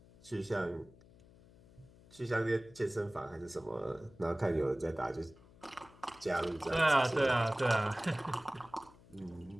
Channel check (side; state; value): left; noise; hum, 24 dB below the sound